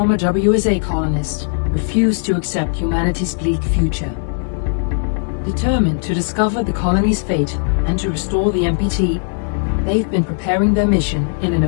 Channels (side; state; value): right; silent; 64 dB below the other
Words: WSA colonists refused to accept humanity's bleak future. Determined to discover the colony's fate and to restore the MPT, they've been preparing their mission in an